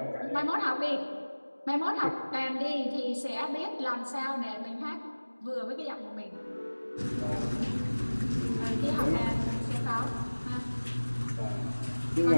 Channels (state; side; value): inverted; both; correlation -1.00